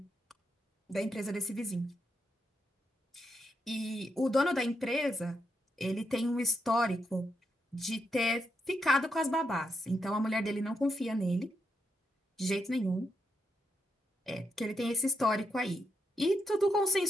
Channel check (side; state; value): both; normal; correlation 0.82